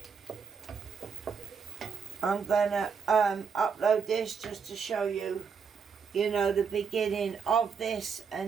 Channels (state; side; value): quieter; left; 6.1 dB